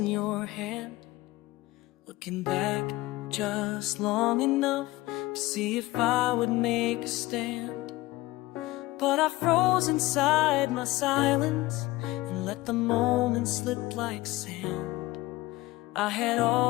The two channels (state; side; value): quieter; right; 18.9 dB